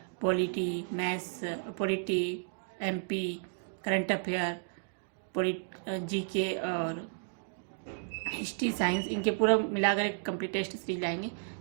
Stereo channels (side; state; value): left; silent; digital silence